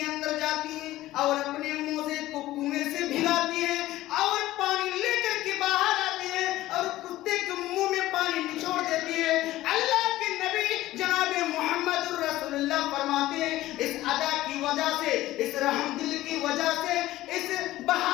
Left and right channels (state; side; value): quieter; right; 15.9 dB